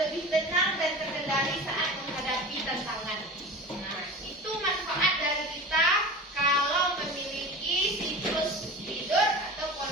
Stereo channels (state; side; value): normal; both; correlation 0.33